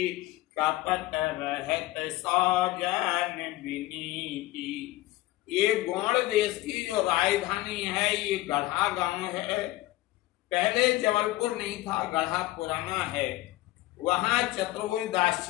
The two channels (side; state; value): right; quieter; 17.4 dB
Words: कपट रहत सौजन विनीति। ये गौड़ देश की जो राजधानी है, ये गढ़ा गांव है। पहले जबलपुर नहीं था, गढ़ा पुराना है। वहां चतुर्भुज दास